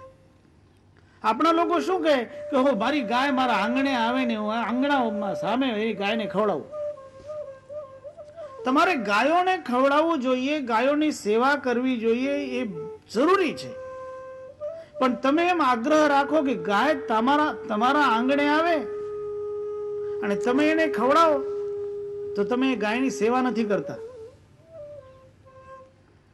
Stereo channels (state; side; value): identical; both; correlation 1.00